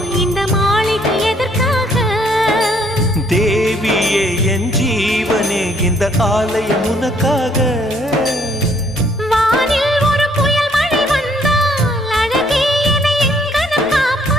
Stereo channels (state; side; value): normal; both; correlation 0.66